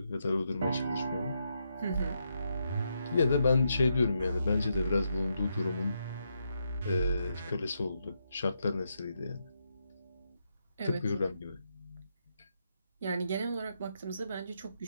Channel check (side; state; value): both; inverted; correlation -0.81